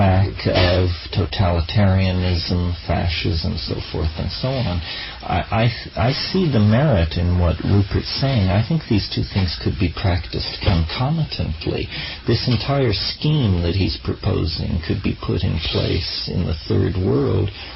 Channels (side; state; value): both; identical; correlation 1.00